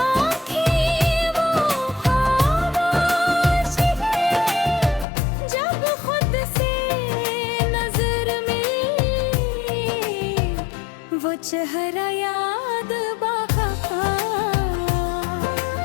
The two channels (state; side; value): drops out; right; at 5.1 s